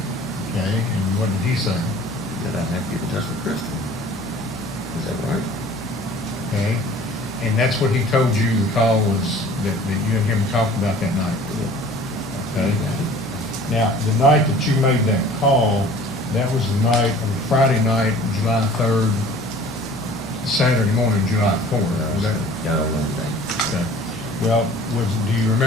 Okay, and what did he say? That I'd have to get in touch with Crystal. Is that right? Okay, and that's what he told you the call was, that you and him talked about that night? Yeah. Okay. You got it. Now, the night that you made that call, that was the night, of Friday night, July 3rd, Saturday morning, July 4th. Was that? I don't know the date. Okay. Well, do you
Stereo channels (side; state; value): both; normal; correlation 0.48